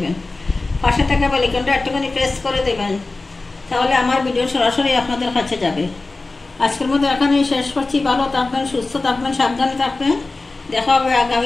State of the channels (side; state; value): right; quieter; 3.4 dB